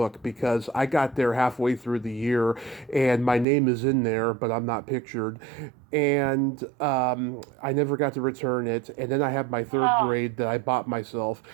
because I got there halfway through the year, and my name is in there, but I'm not pictured, and I never got to return it. And then I have my third oh, grade that I bought myself.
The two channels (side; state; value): left; drops out; at 3.5 s